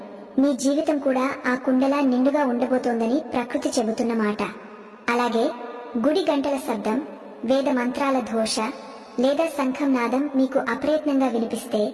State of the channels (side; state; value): both; identical; correlation 1.00